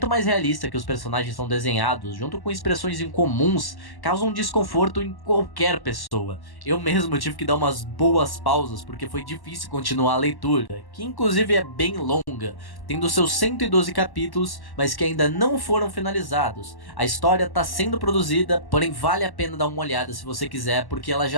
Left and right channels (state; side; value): late; right; 1.1 ms